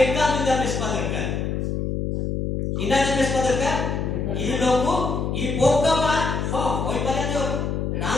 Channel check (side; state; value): left; noise; hum, 1 dB below the sound